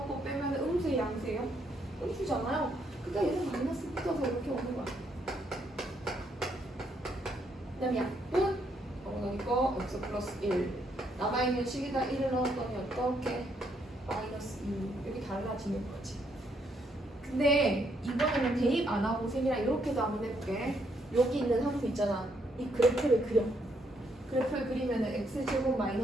빼면 음수의 양수예요? 음수잖아요. 그러니까 얘는 마이너스 붙어서 이렇게 오는 거야. 그 다음에 약분 그러니까 x 플러스 1 남아있는 식에다 1을 넣었더니 어떻게? 마이너스 2 이렇게 달라지는 거지. 근데 이번에는 대입 안 하고 쌤이랑 이렇게도 한번 해볼게. 여기 있는 함수 있잖아. 이 그래프를 그려. 그래프를 그리면 x제곱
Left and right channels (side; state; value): both; normal; correlation 0.74